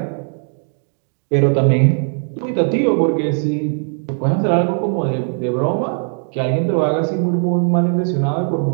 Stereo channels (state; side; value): silent; left; 58 dB below the other